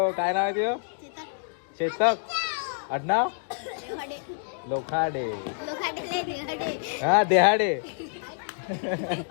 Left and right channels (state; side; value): silent; right; digital silence